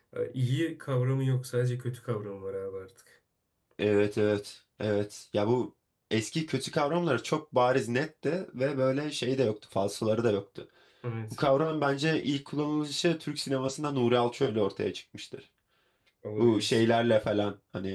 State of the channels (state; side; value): identical; both; correlation 1.00